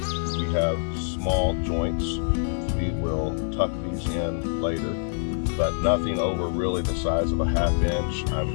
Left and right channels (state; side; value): silent; right; digital silence